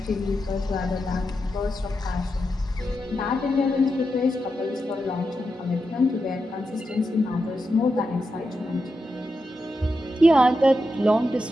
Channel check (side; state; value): both; normal; correlation 0.87